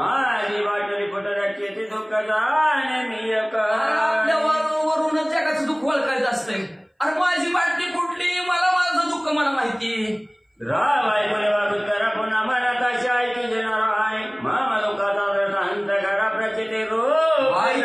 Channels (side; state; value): both; identical; correlation 1.00